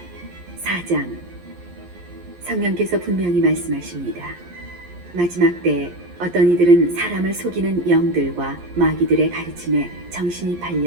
장 성령께서 분명히 말씀하십니다. 마지막 때에 어떤 이들은 사람을 속이는 영들과 마귀들의 가르침에 정신이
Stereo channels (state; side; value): late; left; 11 ms